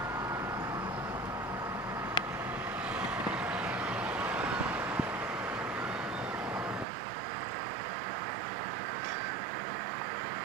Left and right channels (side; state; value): left; drops out; at 6.9 s